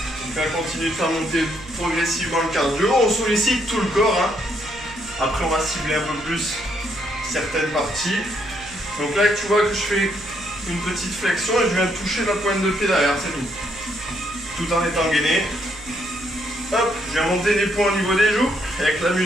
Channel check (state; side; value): noise; right; hum, 19 dB below the sound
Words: On va continuer de faire monter progressivement le cardio. On sollicite tout le corps. Après, on va cibler un peu plus certaines parties. Donc là, tu vois que je fais une petite flexion et je viens toucher la pointe de pied derrière, c'est tout. Tout en étant gainé. Hop, je viens monter les points au niveau des joues. Et avec la